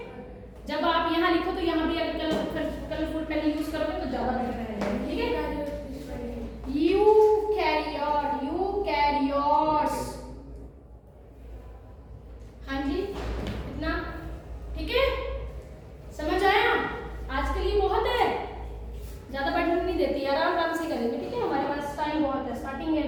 जब आप यहाँ लिखो तो यहाँ भी अगर कलरफुल पेन यूज करोगे तो ज्यादा बेटर रहेगा, ठीक है। Eukaryote, eukaryotes. हाँ जी, इतना ठीक है, समझ आया? आज के लिए बहुत है, ज्यादा बैठने नहीं देती, आराम आराम से करेंगे, ठीक है। हमारे पास टाइम बहुत है, स्टार्टिंग है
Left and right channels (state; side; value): identical; both; correlation 1.00